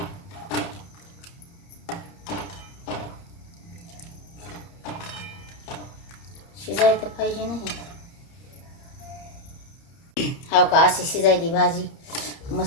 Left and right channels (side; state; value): right; late; 30 ms